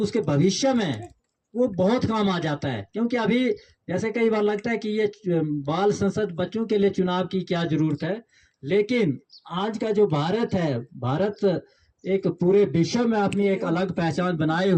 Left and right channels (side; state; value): both; identical; correlation 1.00